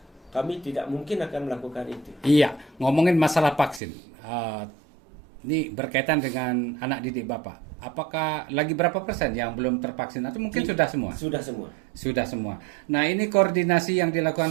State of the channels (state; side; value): drops out; left; at 3.8 s